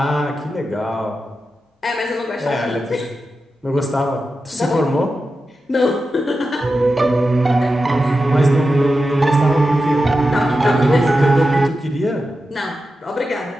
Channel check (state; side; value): normal; both; correlation 0.91